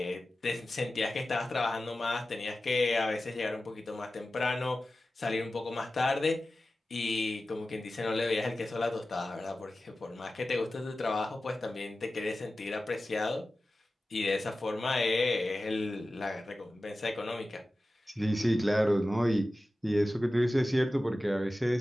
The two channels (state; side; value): normal; both; correlation 0.95